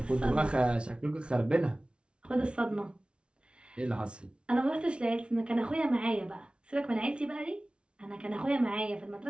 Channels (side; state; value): left; late; 0.058 ms